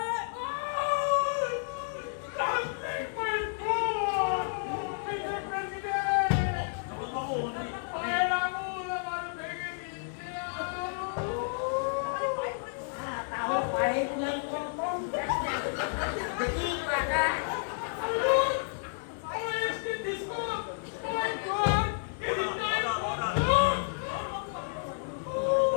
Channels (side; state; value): right; silent; digital silence